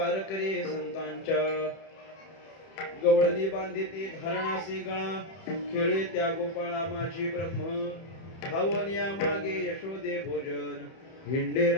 संतांच्या गवळणी बांधिती धारणासी गळा खेळे त्या गोपाळा माझी ब्रह्म भावनिया मागे यशोदे भोजन हिंडे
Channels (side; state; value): right; late; 31 ms